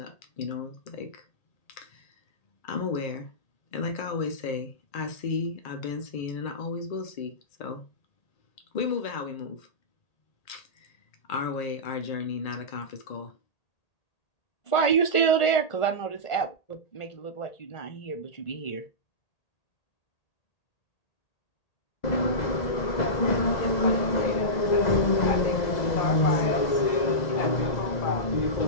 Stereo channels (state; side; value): late; right; 1.8 ms